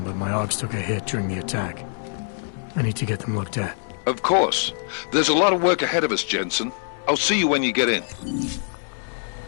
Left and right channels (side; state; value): right; silent; 63 dB below the other